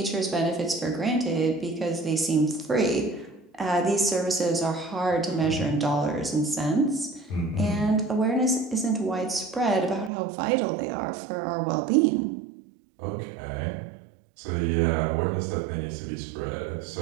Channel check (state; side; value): drops out; left; at 10.1 s